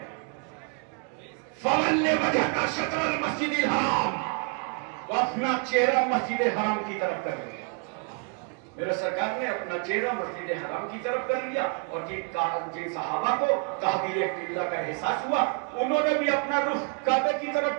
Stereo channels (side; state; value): left; quieter; 36.2 dB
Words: فَوَلِّ وَجْهَكَ شَطْرَ الْمَسْجِدِ الْحَرَامِ، وہ اپنا چہرہ مسجد حرام کی طرف کر لیا۔ میرے سرکار نے اپنا چہرہ مسجد حرام کی طرف کر لیا، اور جن صحابہ کو تحویل قبلہ کا احساس ہوا انہوں نے بھی اپنا رخ کعبے کی